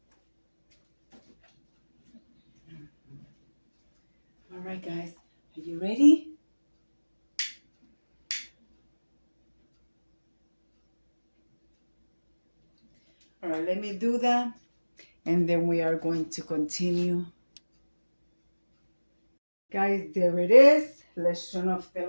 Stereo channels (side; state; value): both; inverted; correlation -1.00